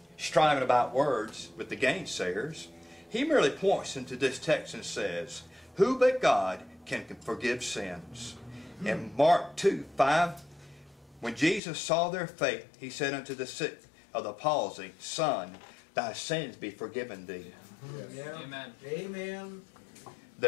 striving about words with the gainsayers, he merely points into this text and says, who but God can forgive sins? In Mark 2:5, when Jesus saw their faith, he said unto the sick of the palsy, Son, thy sins be forgiven thee. Yeah. Amen. Amen.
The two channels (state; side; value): drops out; right; at 11.6 s